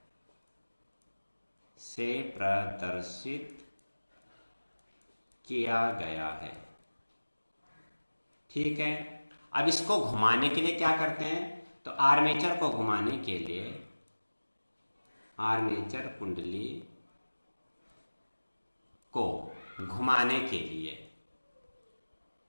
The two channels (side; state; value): both; inverted; correlation -1.00